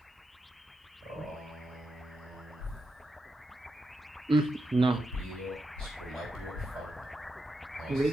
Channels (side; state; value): both; normal; correlation 0.86